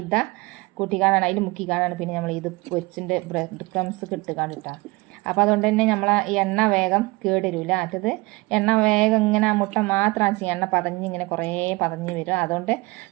കൂട്ടിക്കാണാണ് അതിൽ മുക്കിക്കാണാണ് പിന്നെ നമ്മൾ ഇത് പൊരിച്ചിൻ്റെ ബ്രെഡ് ക്രംസ് കിട്ടുകാണ് കേട്ടോ. അപ്പോൾ അതുകൊണ്ട് തന്നെ നമ്മളെ ഈ എണ്ണ വേഗം കേടരൂല. മറ്റത് എണ്ണ വേഗം ഇങ്ങനെ ആ മുട്ട മാത്രം ചെയ്യും, എണ്ണ പതഞ്ഞ് ഇങ്ങനെ കുറേ പതഞ്ഞ് വരും. അതുകൊണ്ട്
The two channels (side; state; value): left; quieter; 23.4 dB